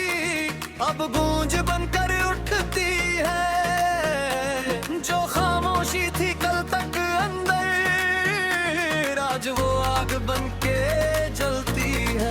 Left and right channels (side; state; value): both; identical; correlation 1.00